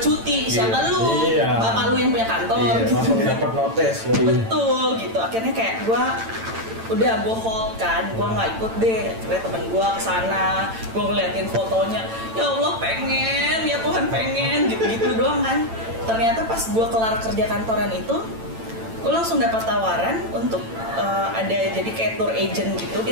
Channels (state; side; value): late; left; 8.9 ms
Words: Siapa lu? Iya. Bapak lu yang punya kantor. Iya, gitu. langsung dapat notes ya. Betul gitu. Akhirnya kayak gue hold kan, gue nggak ikut deh. Akhirnya temen gue kesana, gue ngeliatin fotonya, ya Allah pengen, ya Tuhan pengen, gitu-gitu doang kan. Ternyata pas gue kelar kerja kantoran itu, gue langsung dapat tawaran untuk ada jadi kayak tour agent gitu,